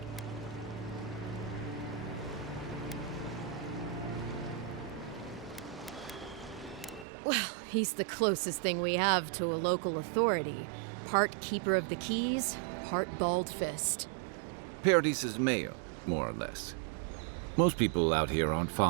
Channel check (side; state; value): left; drops out; at 7.1 s